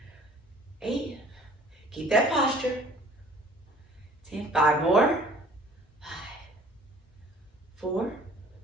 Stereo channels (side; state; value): both; normal; correlation 0.52